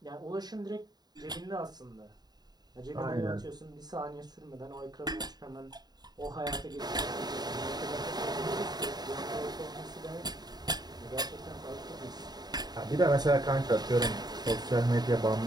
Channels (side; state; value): left; late; 0.20 ms